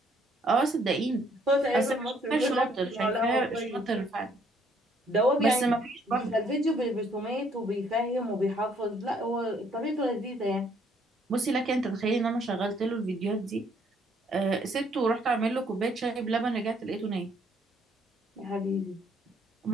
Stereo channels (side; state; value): both; normal; correlation 0.66